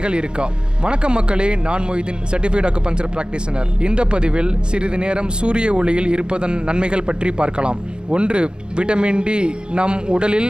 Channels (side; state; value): left; late; 0.049 ms